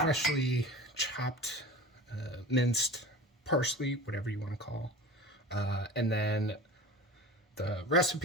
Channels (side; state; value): both; normal; correlation 0.36